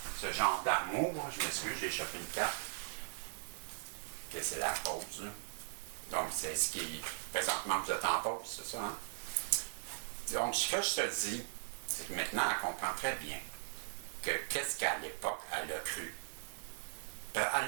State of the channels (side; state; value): left; silent; 52 dB below the other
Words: ce genre d'amour. Je m'excuse, j'ai échappé une carte. Que c'est la pause. Là. Donc, c'est ce qui... Présentement, vous êtes en pause, c'est ça, hein? Donc, ce que je te dis, c'est que maintenant, elle comprend très bien que qu'est-ce qu'à l'époque, elle a cru. Elle